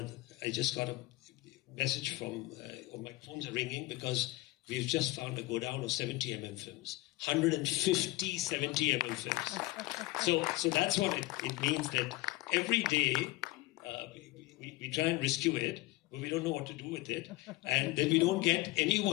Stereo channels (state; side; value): quieter; right; 19.5 dB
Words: I just got a message from, or my phones are ringing, because we've just found a go down of 70mm films. 150 70mm films. So that's what it means, that every day we try and rescue it, but we don't know what to do with it. And then we don't get